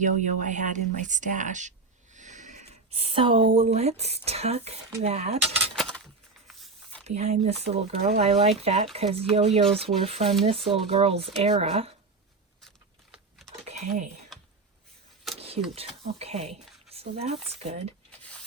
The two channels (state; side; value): quieter; left; 3.9 dB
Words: I had in my stash. So let's tuck that behind this little girl. I like that because yo-yos were from this little girl's era. Okay, cute. Okay, so that's good.